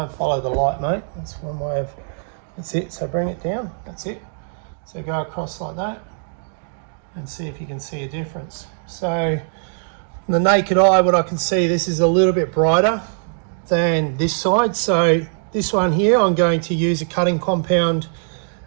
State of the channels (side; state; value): left; silent; digital silence